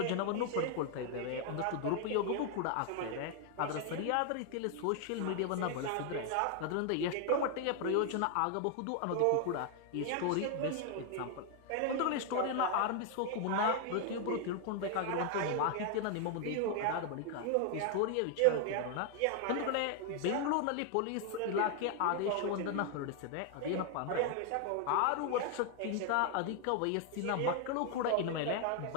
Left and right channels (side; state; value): both; different; correlation 0.00